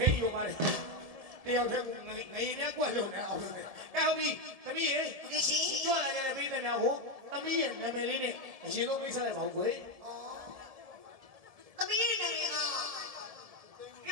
ိန်းယူပါတယ်တယောက်တည်းကငရင်နဲ့ကွက်လုံးနဲ့အောင်လို့အဲ့ဟုတ်ပြီသမီးရေဒီရှိကြွလာကြတဲ့ပြည်သူများကိုသမီးရဲ့နာမည်လေးနဲ့အရင်ဆုံးမိတ်ဆက်လိုက်ပါဦးကွယ်သမီးရဲ့နာမည်ကပြ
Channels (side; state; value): left; late; 1.7 ms